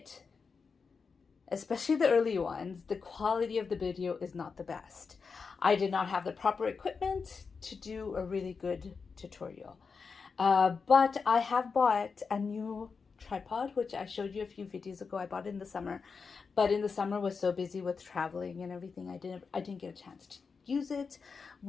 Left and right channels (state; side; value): quieter; right; 5.2 dB